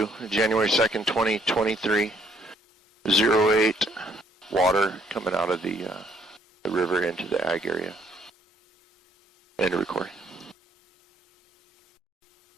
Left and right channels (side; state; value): both; normal; correlation 0.65